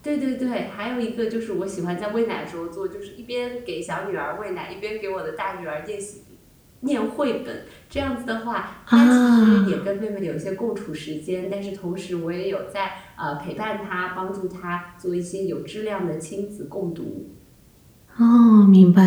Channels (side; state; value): both; identical; correlation 1.00